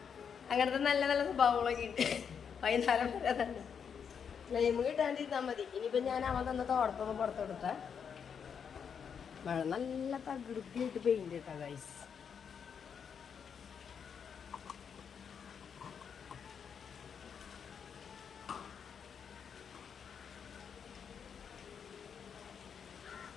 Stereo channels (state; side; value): quieter; right; 7.1 dB